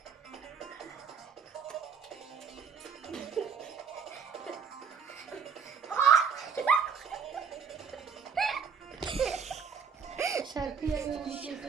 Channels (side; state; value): left; quieter; 6.4 dB